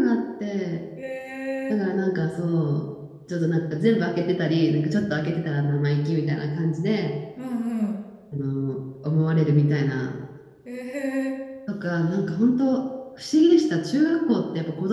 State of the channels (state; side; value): identical; both; correlation 1.00